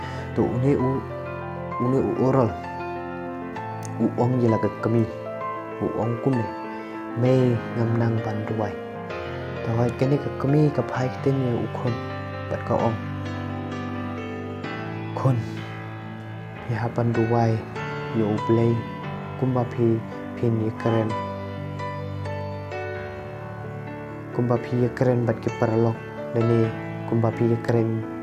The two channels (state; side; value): identical; both; correlation 1.00